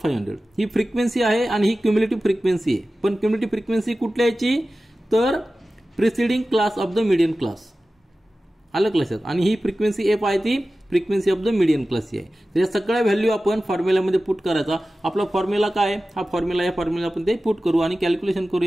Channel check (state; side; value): normal; both; correlation 0.95